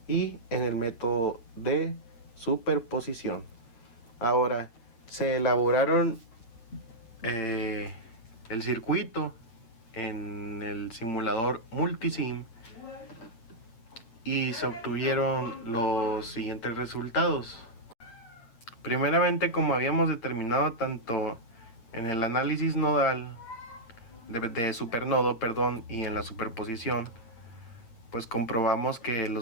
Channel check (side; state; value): right; late; 8.7 ms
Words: y en el método de superposición. Ahora, se elaboraron el circuito en el simulador Multisim y se obtuvieron los siguientes resultados. Primeramente, como habíamos determinado tanto en el análisis nodal de supernodo, y en la superposición, pues comprobamos que